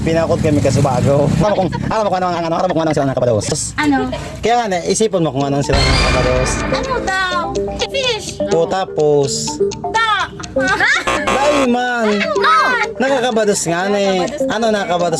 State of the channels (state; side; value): identical; both; correlation 1.00